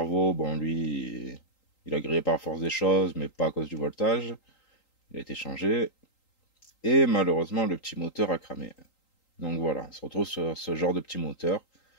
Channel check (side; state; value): right; late; 3.8 ms